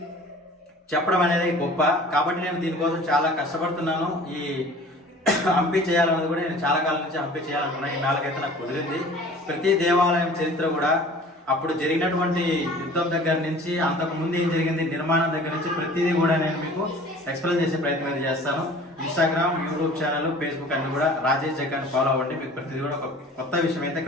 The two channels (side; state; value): both; normal; correlation 0.45